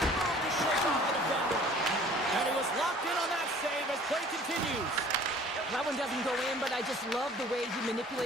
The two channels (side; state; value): both; normal; correlation 0.51